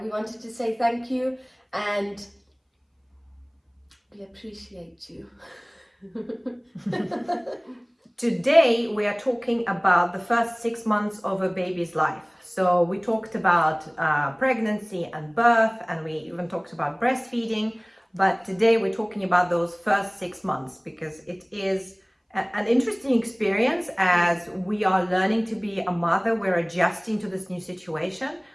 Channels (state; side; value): identical; both; correlation 1.00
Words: we wanted to say thank you and we appreciate you. Today we are talking about the first 6 months of a baby's life. So we talked about pregnancy and birth, and we even talked about breastfeeding. But today we're talking about those first 6 months because it is an interesting experience as we are learning to be a mother. We're adjusting to this new situation.